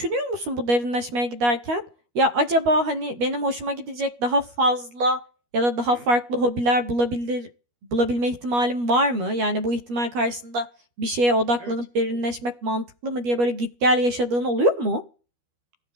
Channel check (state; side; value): late; left; 12 ms